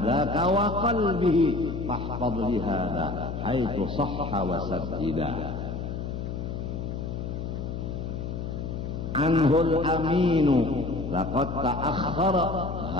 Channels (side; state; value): left; noise; hum, 5 dB below the sound